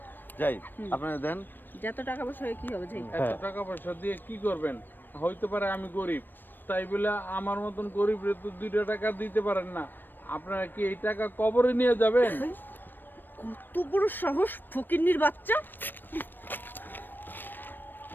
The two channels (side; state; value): right; late; 0.093 ms